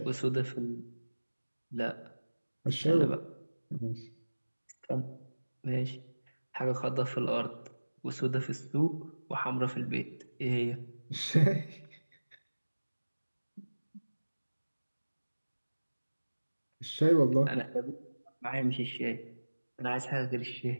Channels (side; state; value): both; inverted; correlation -1.00